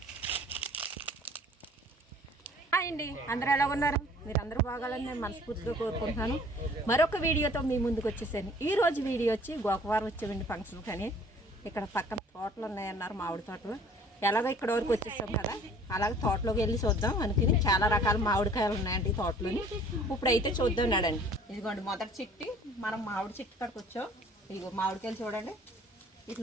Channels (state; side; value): normal; both; correlation 0.52